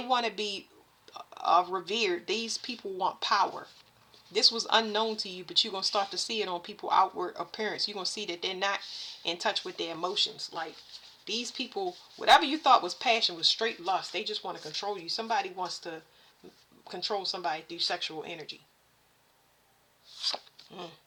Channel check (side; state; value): both; identical; correlation 1.00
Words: revered. These people want power. This was unknown to you, but you're going to start to see it on people's outward appearance. You're going to see that they're not in touch with their emotions. Like, these people, whatever you thought was passion was straight lust. They just want to control you. Somebody wants to control somebody through sexual energy.